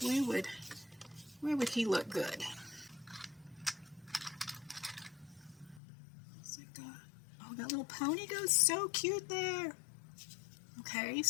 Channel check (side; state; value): right; drops out; at 5.8 s